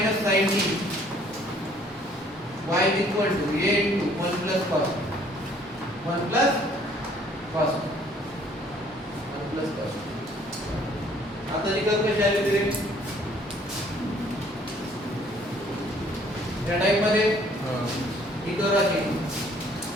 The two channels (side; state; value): both; normal; correlation 0.60